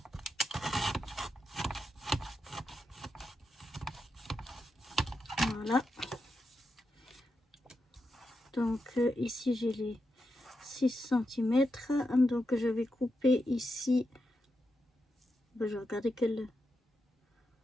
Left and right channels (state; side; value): normal; both; correlation 0.86